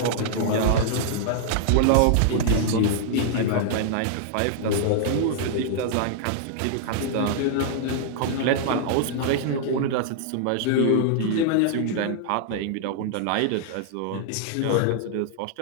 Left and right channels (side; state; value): both; different; correlation -0.01